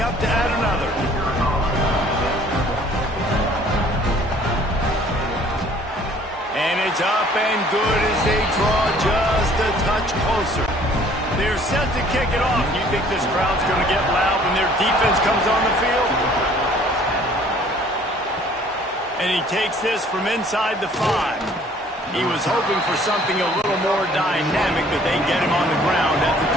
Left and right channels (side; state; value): both; normal; correlation 0.56